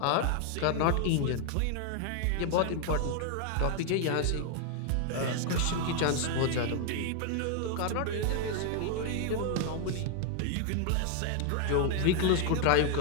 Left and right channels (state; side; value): different; both; correlation 0.00